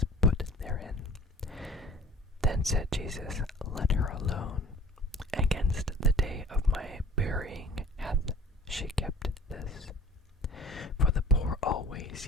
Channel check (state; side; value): normal; both; correlation 0.47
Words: put therein. Then said Jesus, Let her alone. Against the day of my burying hath she kept this. For the poor always